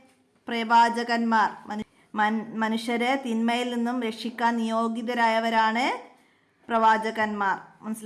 പ്രവാചകന്മാർ. മനുഷ്യരെ തിന്മയിൽ നിന്നും രക്ഷിക്കാൻ നിയോഗിതരായവരാണ് പ്രവാചകന്മാർ.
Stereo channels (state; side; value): identical; both; correlation 1.00